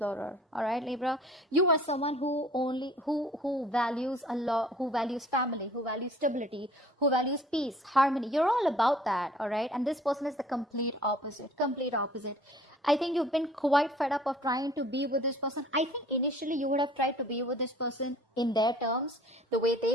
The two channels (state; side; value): normal; both; correlation 0.52